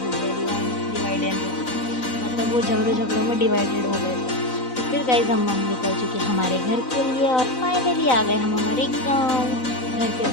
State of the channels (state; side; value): late; right; 4.0 ms